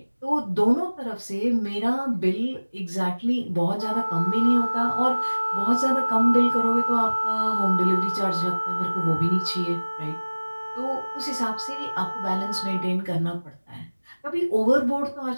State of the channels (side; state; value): both; inverted; correlation -1.00